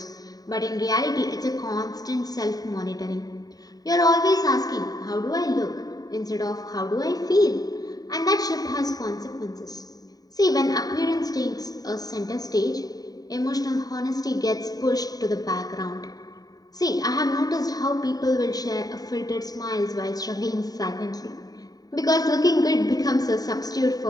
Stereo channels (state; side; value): late; right; 0.18 ms